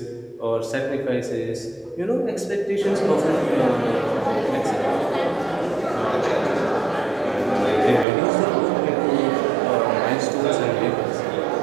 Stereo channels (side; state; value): left; drops out; at 8.1 s